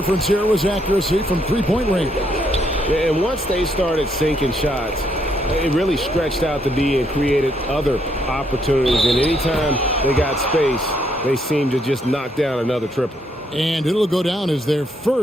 here was accuracy from three-point range. And once they started sinking shots, it really stretched out the D and created other opportunities. And anytime they got space, they seemed to just knock down another triple. And it'll go down as their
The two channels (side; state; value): both; normal; correlation 0.73